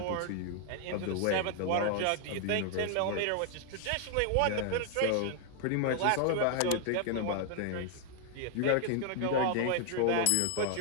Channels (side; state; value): both; different; correlation 0.00